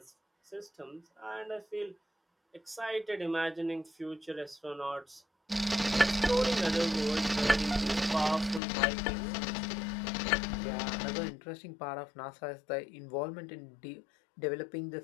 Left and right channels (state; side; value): drops out; right; at 8.6 s